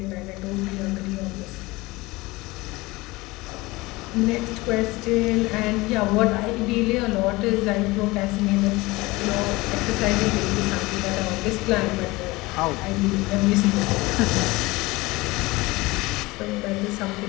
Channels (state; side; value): quieter; right; 21.7 dB